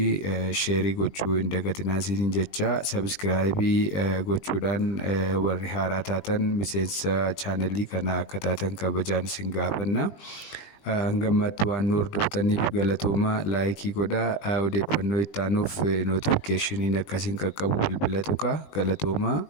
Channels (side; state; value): right; late; 19 ms